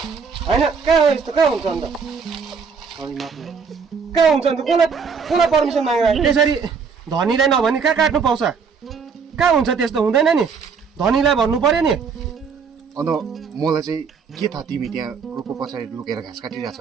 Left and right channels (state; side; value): quieter; left; 5.7 dB